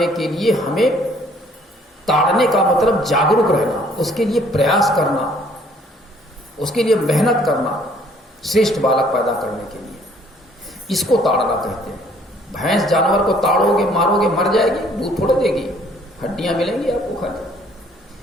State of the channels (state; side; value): normal; both; correlation 0.60